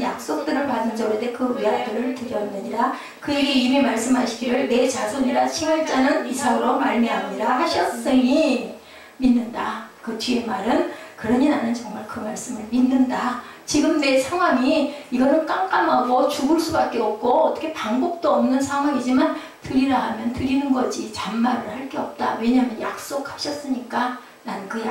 약속들을 받은 자로되 그 외아들을 드렸느니라. 그에게 이미 말씀하시기를 내 자손이라 칭할 자는 이삭으로 말미암으리라 하셨으니 믿는다. 그 뒤에 말은 그러니 나는 정말 그 말씀을 믿는다. 지금 내 상황이 이거는 깜깜하고 죽을 수밖에 없고 어떻게 방법도 없는 상황이지만 드리라 하면 드리는 거지 잔말을 할 게 없다. 왜냐하면 약속하셨으니까 나는 그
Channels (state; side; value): identical; both; correlation 1.00